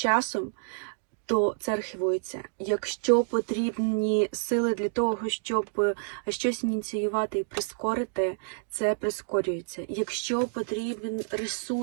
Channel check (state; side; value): silent; left; digital silence